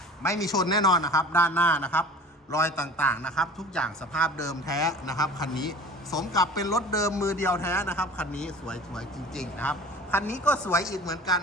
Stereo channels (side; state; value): both; normal; correlation 0.41